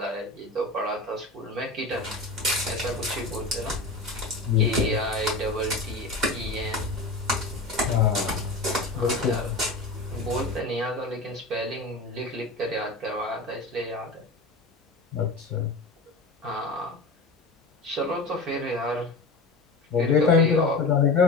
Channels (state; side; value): quieter; right; 3.1 dB